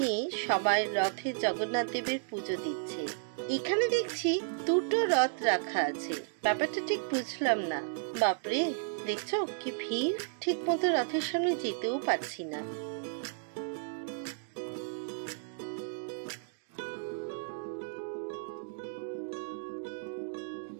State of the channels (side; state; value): left; silent; digital silence